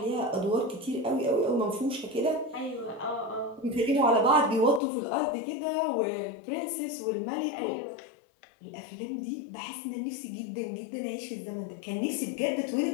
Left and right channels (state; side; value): drops out; right; at 4.8 s